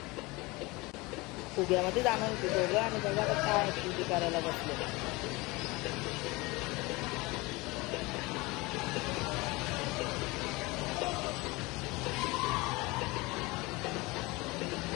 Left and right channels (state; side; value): quieter; right; 23.6 dB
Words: फुग्यामध्ये जाणार होती दोघं आणि बघा आता काय ॲक्टिव्हिटी करायला बसले.